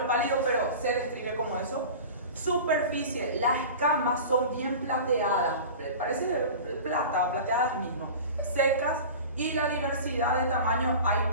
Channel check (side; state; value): both; inverted; correlation -0.35